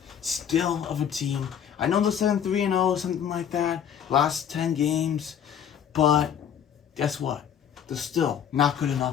still of a team. I know they're 7-3-0, something like that, last 10 games, but guess what? They're still not good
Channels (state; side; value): quieter; right; 8.7 dB